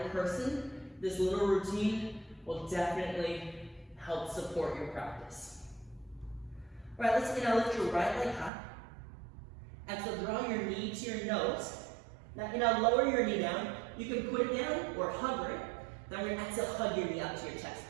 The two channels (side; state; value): left; drops out; at 8.5 s